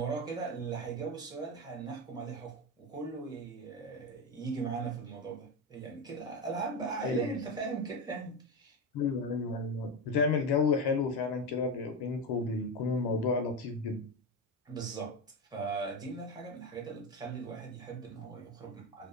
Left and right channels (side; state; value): both; normal; correlation 0.16